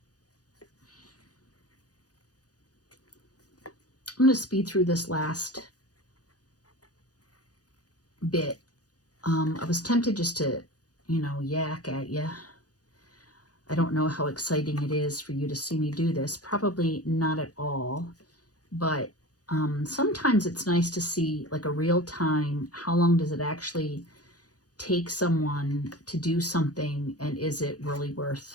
I'm going to speed through this last bit. I was tempted just to, yak at you. I don't know how exciting it is for you to see me do this. Probably not at all. But sometimes it's nice to see like a real time, how long does it actually take someone to do something, and is it really worth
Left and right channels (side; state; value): right; late; 0.68 ms